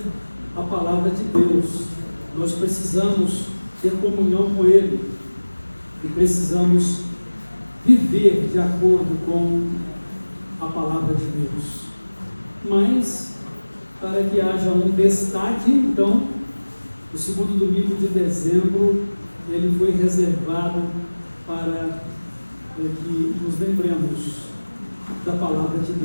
a palavra de Deus, nós precisamos ter comunhão com Ele e precisamos viver de acordo com a palavra de Deus. Mas, para que haja um destaque, então, o segundo domingo de dezembro, ele foi reservado para que nos lembremos da palavra de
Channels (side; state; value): both; inverted; correlation -1.00